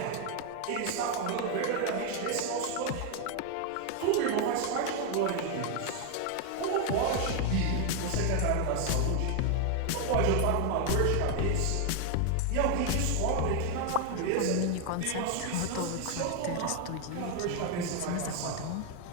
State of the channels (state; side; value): different; both; correlation 0.01